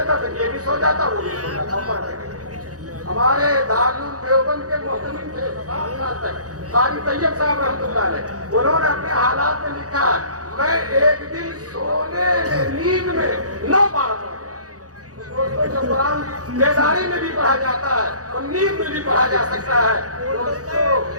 پھر یہ بھی سو جاتا وہ بھی سو جاتا۔ ہمارے دارالعلوم دیوبند کے محتمم تھے 7 سال تک، قاری طیب صاحب رحمۃ اللہ علیہ، انہوں نے اپنے حالات میں لکھا میں ایک دن سونے میں نیند میں 9 بار پڑھا۔ دوستوں جو قرآن بیداری میں بھی پڑھا جاتا ہے اور نیند میں بھی پڑھا جا سکتا ہے، دوستوں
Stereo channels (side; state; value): left; late; 0.67 ms